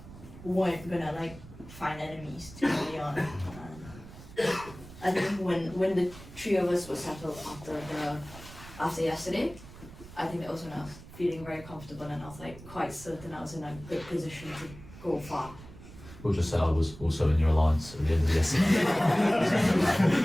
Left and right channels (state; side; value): noise; right; rumble, 17 dB below the sound